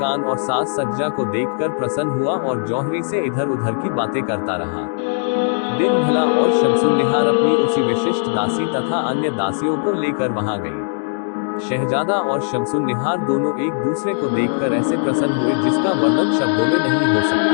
और साज सज्जा को देखकर प्रसन्न हुआ और जौहरी से इधर उधर की बातें करता रहा। दिन भला और शमसुन्निहार अपनी उसी विशिष्ट दासी तथा अन्य दासियों को लेकर वहां गई। शहजादा और शमसुन्निहार दोनों एक दूसरे को देखकर ऐसे प्रसन्न हुए जिसका वर्णन शब्दों में नहीं हो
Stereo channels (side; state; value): right; silent; digital silence